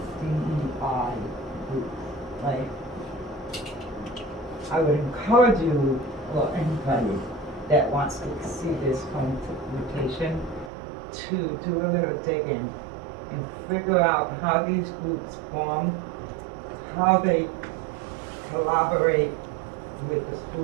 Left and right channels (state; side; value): drops out; left; at 10.7 s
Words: DEI groups. Like, I would encourage you, or anybody that wants to see this home rotation, to do a little digging and figure out how these groups form, how they collaborate with the